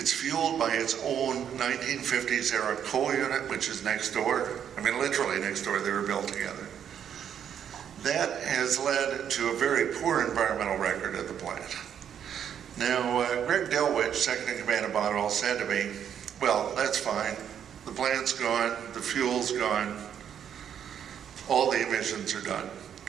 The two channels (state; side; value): quieter; left; 8.9 dB